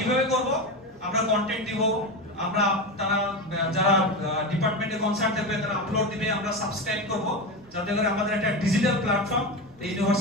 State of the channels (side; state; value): right; noise; rumble, 29 dB below the sound